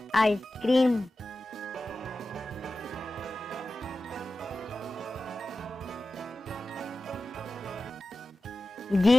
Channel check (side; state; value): both; normal; correlation 0.94